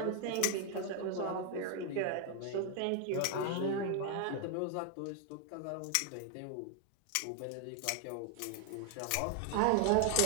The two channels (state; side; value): different; both; correlation 0.00